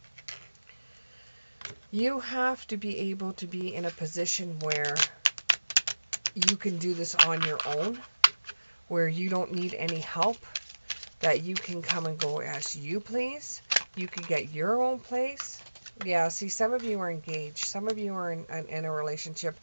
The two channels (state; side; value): inverted; both; correlation -1.00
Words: You have to be able to be in a position where you can do this on your own, where you don't need any help, that you can come and go as you please. You can get your own place. Yeah, see, some of you are engaged. Some of you are in a relationship